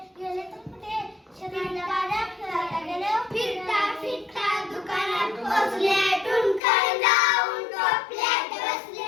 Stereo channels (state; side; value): drops out; right; at 6.6 s